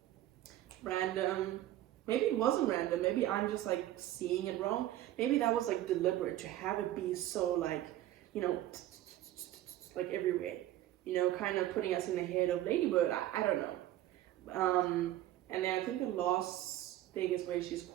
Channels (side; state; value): left; quieter; 13.9 dB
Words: random. Maybe it wasn't random. Maybe I'm just like seeing it wrong. Maybe that was like deliberate to have it be so like, you know, like everywhere. You know, kind of putting us in the head of Ladybird. I don't know. And then I think the last thing is where she's